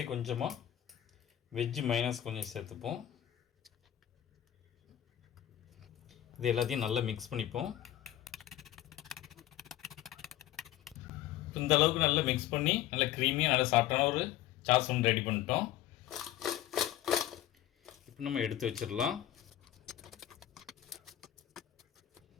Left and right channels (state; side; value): quieter; right; 12.7 dB